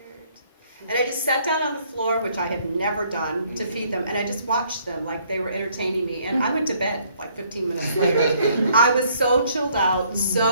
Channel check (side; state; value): both; inverted; correlation -0.65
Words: And I just sat down on the floor, which I had never done, to feed them. And I just watched them like they were entertaining me. And I went to bed like 15 minutes later. I was so chilled out,